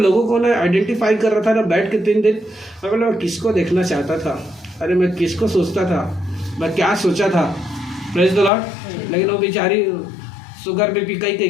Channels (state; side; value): drops out; right; at 8.5 s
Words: को ना आइडेंटिफाई कर रहा था ना बैठ के 3 दिन, मैं किसको देखना चाहता था, अरे मैं किसको सोचता था, मैं क्या सोचा था। Praise the Lord. लेकिन वो बेचारी शुगर बीपी कई